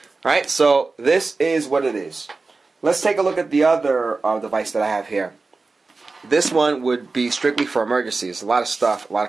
Alright, so this is what it is. Let's take a look at the other device that I have here. This one would be strictly for emergencies. A lot of stuff, a lot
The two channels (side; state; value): left; quieter; 3.9 dB